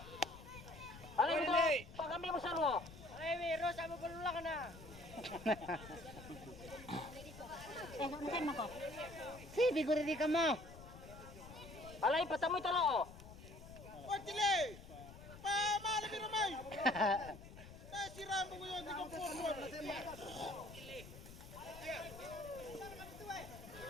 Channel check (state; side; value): noise; left; rumble, 15 dB below the sound